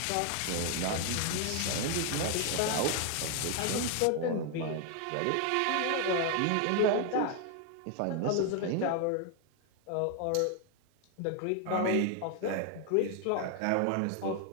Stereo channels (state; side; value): different; both; correlation 0.00